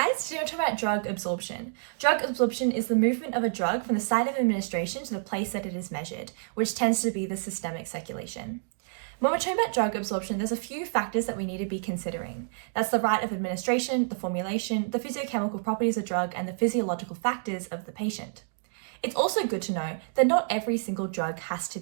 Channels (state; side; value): silent; left; digital silence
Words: today we're talking about drug absorption. Drug absorption is the movement of a drug from the site of administration to the place that it is measured, which tends to be the systemic circulation. When we're talking about drug absorption, there's a few factors that we need to be considering. That's the route of administration, the formulation, the physiochemical properties of drug, and the physiological factors of the patient. It's also good to know that not every single drug has to